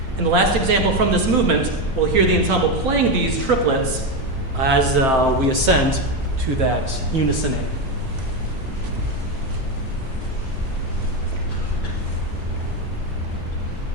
In the last example from this movement, we'll hear the ensemble playing these triplets as we ascend to that unison A.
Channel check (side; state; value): both; normal; correlation 0.11